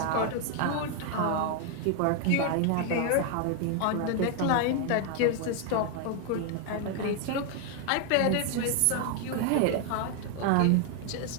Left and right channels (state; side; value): different; both; correlation 0.01